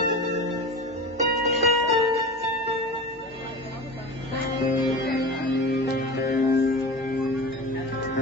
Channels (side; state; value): both; normal; correlation 0.31